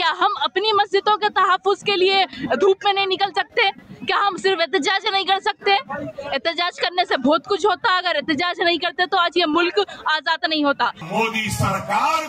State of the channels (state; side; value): identical; both; correlation 1.00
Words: کیا ہم اپنی مسجدوں کے تحفظ کے لیے دھوپ میں نہیں نکل سکتے؟ کیا ہم صرف احتجاج نہیں کر سکتے؟ احتجاج کرنے سے بہت کچھ ہوتا، اگر احتجاج نہیں کرتے تو آج یہ ملک آزاد نہیں ہوتا۔ مودی سرکار